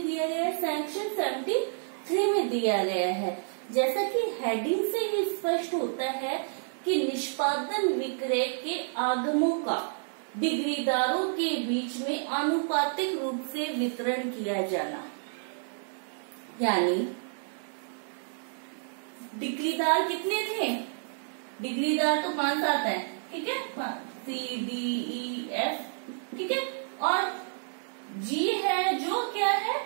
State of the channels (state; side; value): silent; left; digital silence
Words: दिया गया है? सेक्शन 73 में दिया गया है। जैसा कि हेडिंग से ही स्पष्ट होता है कि निष्पादन विक्रय के आगमों का डिग्रीदारों के बीच में आनुपातिक रूप से वितरण किया जाना, यानी डिग्रीदार कितने थे? डिग्रीदार तो 5-7 है, ठीक है, CDEF, ठीक है। और जी है जो क्या है,